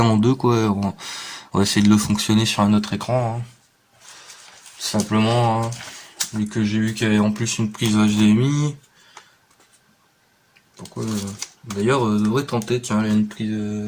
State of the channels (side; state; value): both; identical; correlation 1.00